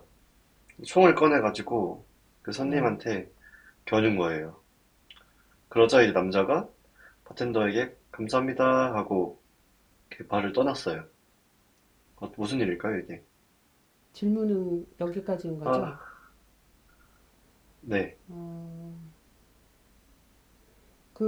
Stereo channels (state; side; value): identical; both; correlation 1.00